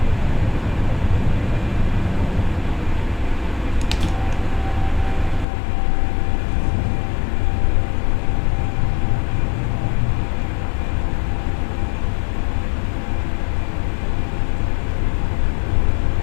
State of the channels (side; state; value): right; drops out; at 5.5 s